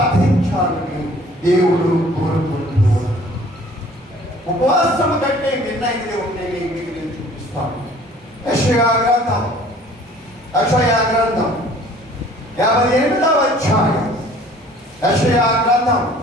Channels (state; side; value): normal; both; correlation 0.52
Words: దేవుడు కోరుకుంటున్నాడు. ఉపవాసం కంటే మిన్నైనది ఉంటే మీకు నేను చూపిస్తాను. యెషయా గ్రంథం 58వ అధ్యాయం. యెషయా గ్రంథం